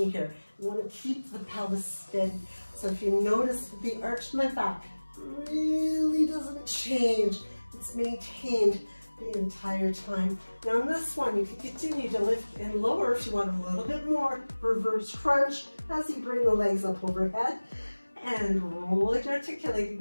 here. You want to keep the pelvis steady. So if you notice the arch of my back really doesn't change, it's maintained the entire time. Now on this one, you can continue to lift and lower if you want a little bit more. Reverse crunch as you bring the legs up overhead. And rolling,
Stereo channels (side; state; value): both; inverted; correlation -1.00